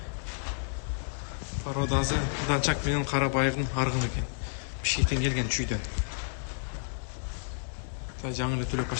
Породасы Данчак менен Карабайырдын аргыны экен. Бишкектен келген чүйдөн. Тай жаңы эле түлөп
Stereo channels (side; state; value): right; silent; digital silence